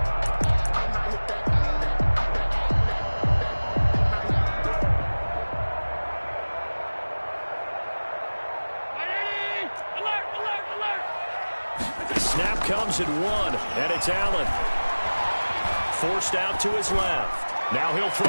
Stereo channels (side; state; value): both; inverted; correlation -1.00